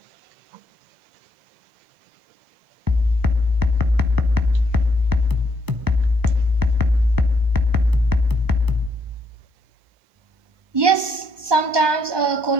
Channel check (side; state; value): left; late; 1.2 ms